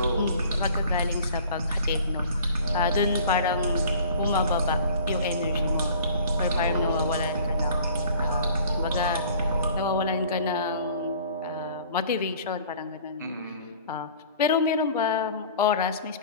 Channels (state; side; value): inverted; both; correlation -0.48